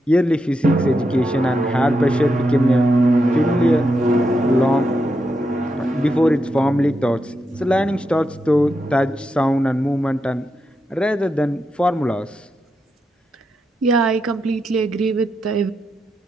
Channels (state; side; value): normal; both; correlation 0.85